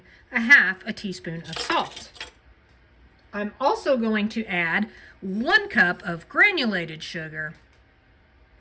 a half a teaspoon of salt. I'm also going to add 1 cup of granulated sugar.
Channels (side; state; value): both; identical; correlation 1.00